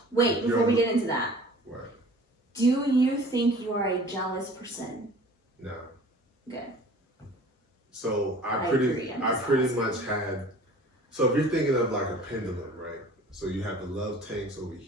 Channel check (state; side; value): normal; both; correlation 0.46